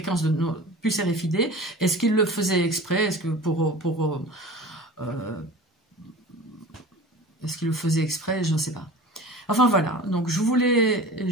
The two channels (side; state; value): both; normal; correlation 0.38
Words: de nos puces RFID, est-ce qu'il le faisait exprès? Est-ce que est-ce qu'il le faisait exprès? Je ne sais pas. Enfin voilà, donc je voulais